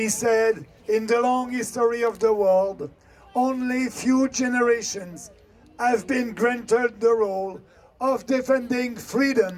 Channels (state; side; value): identical; both; correlation 1.00